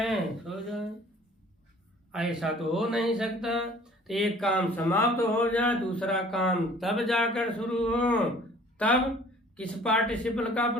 सो जाए, ऐसा तो हो नहीं सकता। तो एक काम समाप्त हो जाए, दूसरा काम तब जाकर शुरू हो, तब किस पार्टिसिपल का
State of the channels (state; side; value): normal; both; correlation 0.52